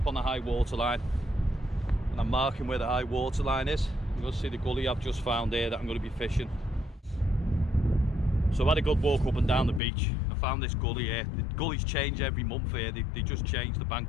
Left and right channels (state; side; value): drops out; right; at 9.8 s